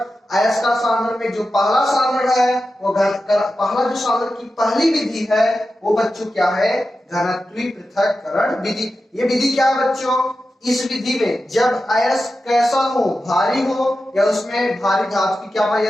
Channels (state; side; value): normal; both; correlation 0.92